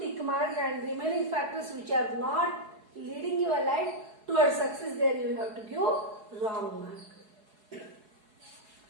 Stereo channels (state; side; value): late; left; 4.7 ms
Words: mark, and remaining factors which are not leading your life towards success, there you have to give wrong mark.